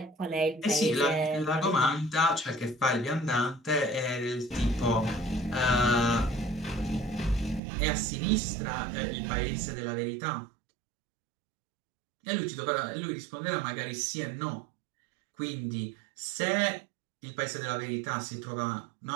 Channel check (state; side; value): drops out; left; at 7.6 s